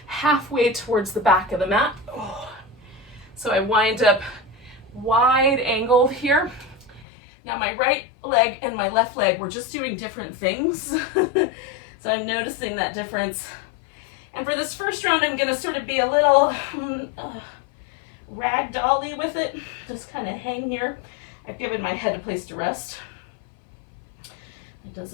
halfway towards the back of the mat. Oh. So I wind up wide angled here. Now my right leg and my left leg, we're just doing different things. So I'm noticing that difference. And for this first round, I'm going to sort of be a little ragdolly with it. Just kind of hang here. I've given my head a place to rest. It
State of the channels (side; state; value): right; drops out; at 7.1 s